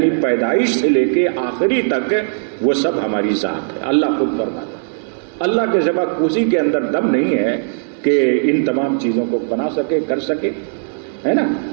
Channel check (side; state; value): left; silent; 56 dB below the other